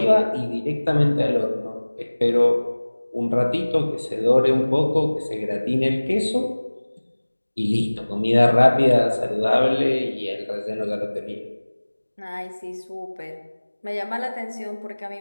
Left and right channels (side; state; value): both; inverted; correlation -1.00